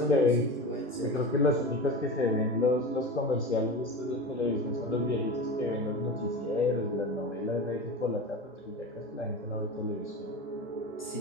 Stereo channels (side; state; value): both; normal; correlation 0.28